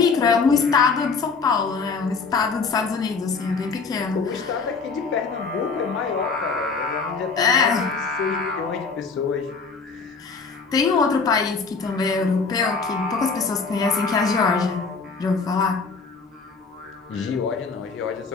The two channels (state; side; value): quieter; right; 4.7 dB